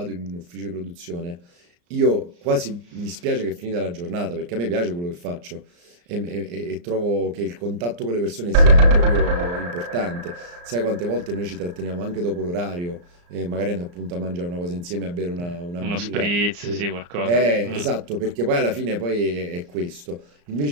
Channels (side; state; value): left; late; 34 ms